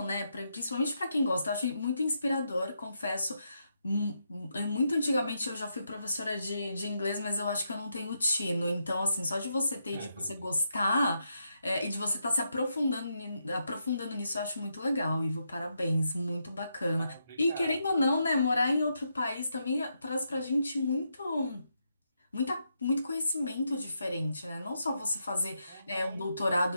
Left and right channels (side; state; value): both; inverted; correlation -0.81